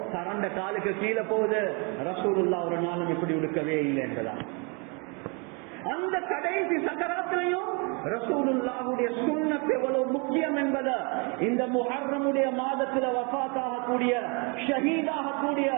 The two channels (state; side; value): quieter; left; 33.2 dB